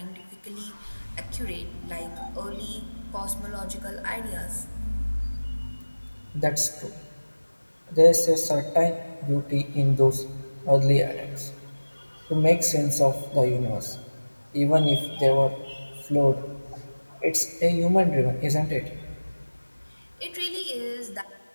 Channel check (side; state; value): both; inverted; correlation -1.00